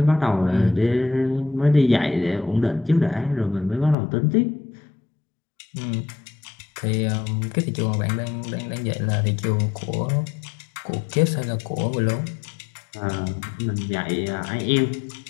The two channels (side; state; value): right; drops out; at 4.0 s